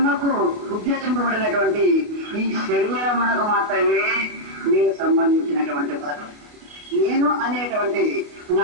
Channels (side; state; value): left; late; 29 ms